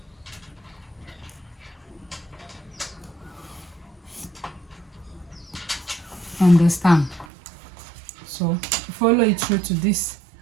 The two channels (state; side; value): drops out; left; at 7.2 s